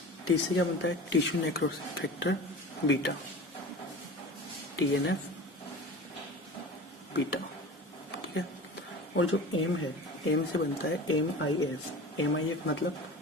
से क्या बनता है, tissue necrosis factor beta, TNF beta. ठीक है, और जो एम है, एम से बनता है MIF मतलब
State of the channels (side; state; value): both; normal; correlation 0.35